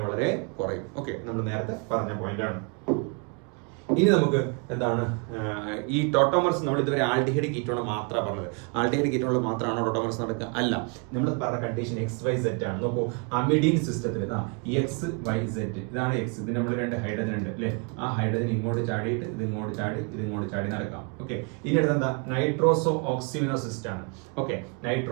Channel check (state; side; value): quieter; left; 35.4 dB